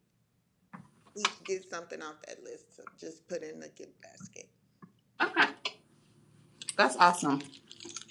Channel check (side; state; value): both; identical; correlation 1.00